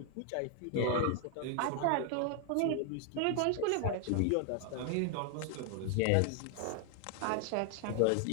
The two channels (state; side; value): different; both; correlation 0.00